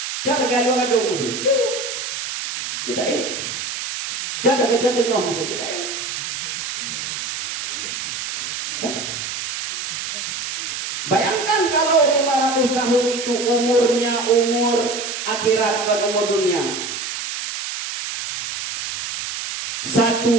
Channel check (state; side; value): noise; right; hiss, 5 dB below the sound